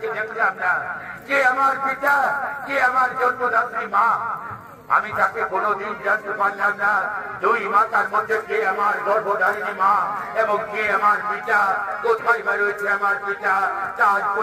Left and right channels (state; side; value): identical; both; correlation 1.00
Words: দেখলাম না। কে আমার পিতা, কে আমার জন্মদাত্রী মা, আমি তাকে কোনোদিন জানতে পারলাম না। দুই মাতার মধ্যে কে আমার গর্ভধারিণী মা এবং কে আমার পিতা, কোথায় রয়েছে আমার পিতা, তা আজ